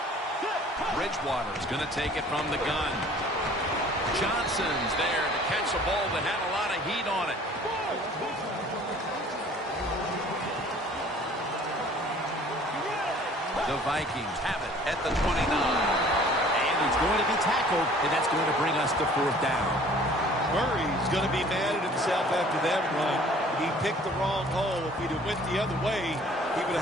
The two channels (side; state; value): both; normal; correlation 0.52